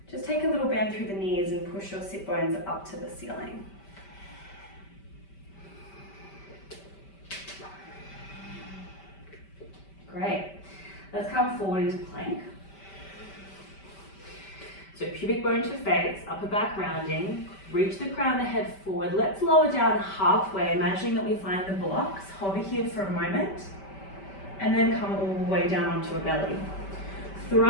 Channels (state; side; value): late; right; 5.1 ms